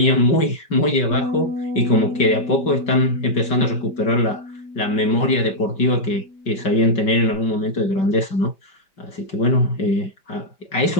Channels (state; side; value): late; right; 5.2 ms